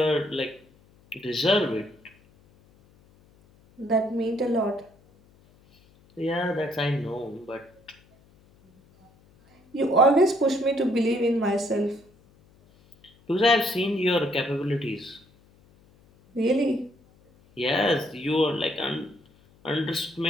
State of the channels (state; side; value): noise; left; hum, 30 dB below the sound